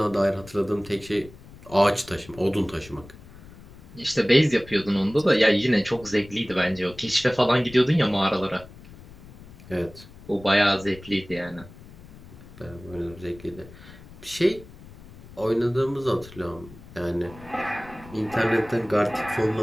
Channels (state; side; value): noise; left; rumble, 19 dB below the sound